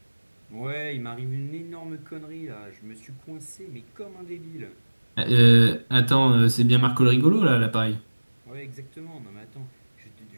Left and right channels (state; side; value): inverted; both; correlation -1.00